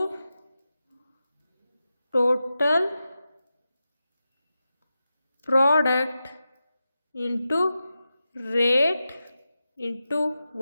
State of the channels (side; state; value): both; inverted; correlation -0.91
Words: total product into rate into